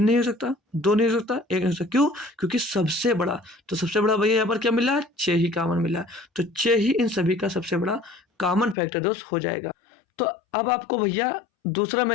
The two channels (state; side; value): drops out; right; at 8.8 s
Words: नहीं हो सकता, 2 नहीं हो सकता, 1 नहीं हो सकता। क्यों? क्योंकि सबसे बड़ा, तो सबसे बड़ा भैया यहाँ पर क्या मिला? 6 ही कॉमन मिला, तो 6 ही इन सभी का सबसे बड़ा कॉमन फैक्टर दोस्त हो जाएगा। तो अब आपको भैया दूसरा